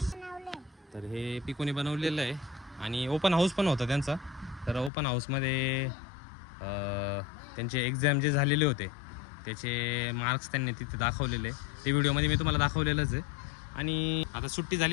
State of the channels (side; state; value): right; drops out; at 4.9 s